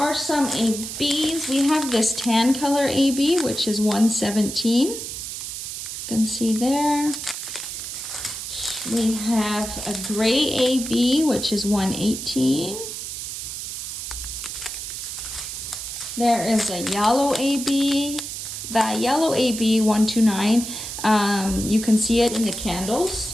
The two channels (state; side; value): noise; right; hiss, 7 dB below the sound